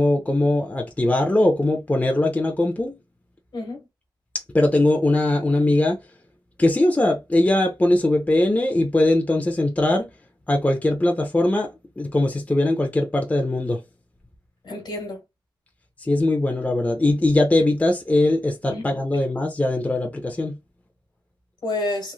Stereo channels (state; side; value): normal; both; correlation 0.93